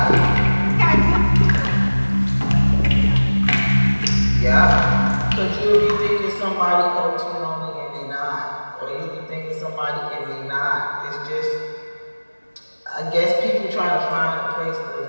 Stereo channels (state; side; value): inverted; both; correlation -1.00